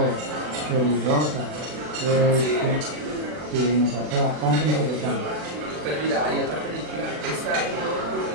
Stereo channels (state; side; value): late; left; 40 ms